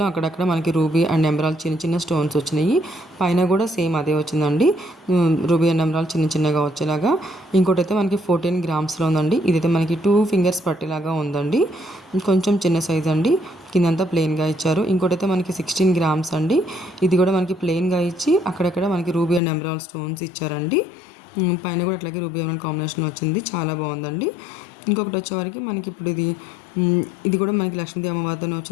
అక్కడక్కడ మనకి రూబీ అండ్ ఎమరాల్డ్ చిన్న చిన్న స్టోన్స్ వచ్చినాయి. పైన కూడా సేమ్ అదే వచ్చిందండి, రూబీ అండ్ ఎమరాల్డ్ చిన్న చిన్నగా వచ్చేలాగా. ఇంకోటి అయితే మనకి 14 గ్రామ్స్లో ఉందండి. ఇదైతే మనకి 2 ఫింగర్స్ పట్టేలాగా ఉందండి, కొంచెం చిన్న సైజ్ అండి. కిందంతా ప్లెయిన్గా ఇచ్చారు. ఇంకోటి అయితే మనకి 16 గ్రామ్స్ అండి. ఇది కూడా మనకి ప్లెయిన్గా ఇచ్చి అక్కడక్కడ మనకి రూబీ అండ్ ఎమరాల్డ్ స్టోన్స్ ఇచ్చారండి. పైన కూడా అట్లాగే రూబీ ఎమరాల్డ్ కాంబినేషన్ వచ్చింది, చాలా బాగుందండి. ఇంకొకటి వచ్చేవరకు మనకి ఇప్పుడు ఇది కూడా మనకి లక్ష్మీదేవి అమ్మవారితోనే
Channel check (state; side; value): drops out; right; at 19.4 s